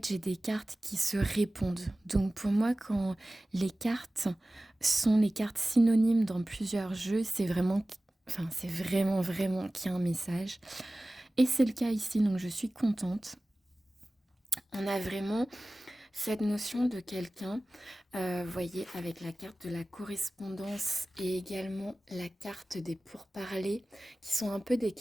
j'ai des cartes qui se répondent. Donc pour moi quand les cartes sont les cartes synonymes dans plusieurs jeux, c'est vraiment vraiment qu'il y a un message. Et c'est le cas ici, donc je suis contente. On a vraiment cette notion de quelqu'un, vous voyez, avec la carte de la correspondance et également la carte des pourparlers, qui sont un peu des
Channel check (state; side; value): normal; both; correlation 0.97